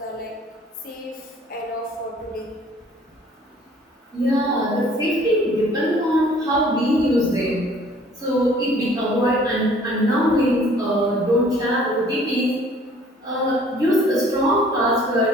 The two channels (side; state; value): both; normal; correlation 0.55